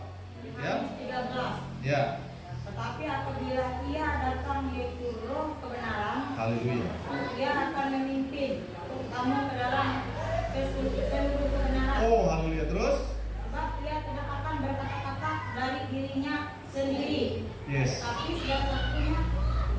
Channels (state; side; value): identical; both; correlation 1.00